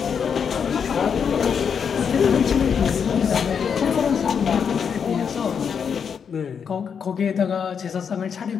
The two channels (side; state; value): right; quieter; 6.9 dB